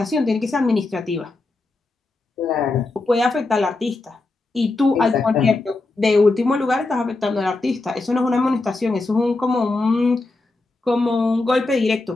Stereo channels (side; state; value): right; quieter; 3.2 dB